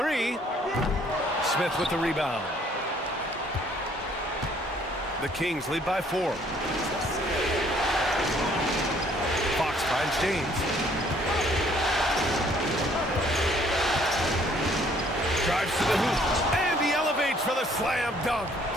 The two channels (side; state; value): both; normal; correlation 0.62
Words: Smith with the rebound. The Kings lead by 4. Finds James. Drives to the hoop. And he elevates for the slam dunk.